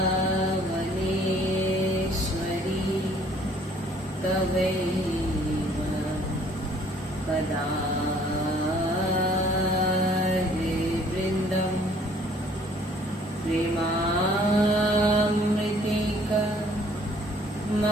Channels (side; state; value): both; normal; correlation 0.59